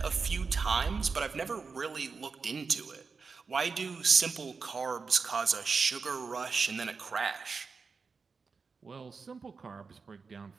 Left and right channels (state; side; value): quieter; left; 4.9 dB